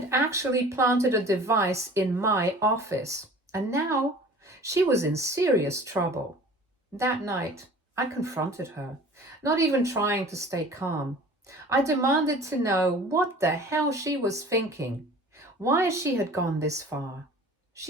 actually planted a device in my office. And now she was in serious trouble. That night, I confronted her, not even trying to stay calm. I demanded to know what the hell she was thinking, why she had gone this far.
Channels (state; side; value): normal; both; correlation 0.44